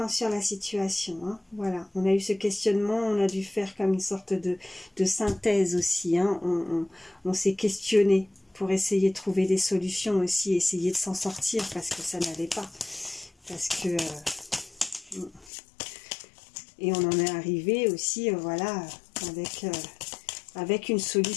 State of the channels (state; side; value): drops out; right; at 15.5 s